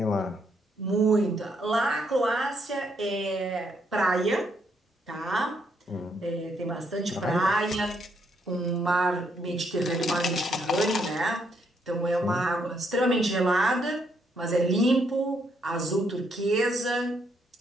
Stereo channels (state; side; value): normal; both; correlation 0.74